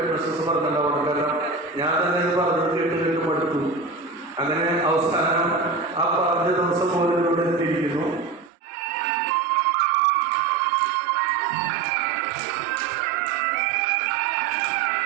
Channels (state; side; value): drops out; left; at 8.5 s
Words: പറഞ്ഞിട്ടുണ്ടാവണം. കാരണം ഞാൻ തന്നെ ഇത് പറഞ്ഞത് കേട്ട് മടുത്തു. അങ്ങനെ അവസാനം ആ പറഞ്ഞ ദിവസം പോലും ഇവിടെ എത്തിയിരിക്കുന്നു.